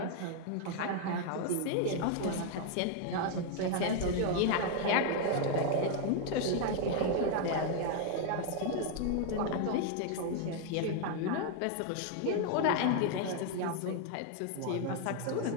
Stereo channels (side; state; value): both; different; correlation 0.00